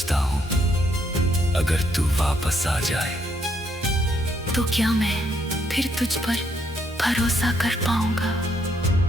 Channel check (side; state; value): both; normal; correlation 0.73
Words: हूँ अगर तू वापस आ जाए तो क्या मैं फिर तुझ पर भरोसा कर पाऊंगा?